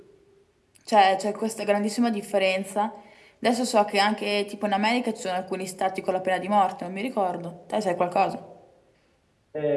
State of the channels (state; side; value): identical; both; correlation 1.00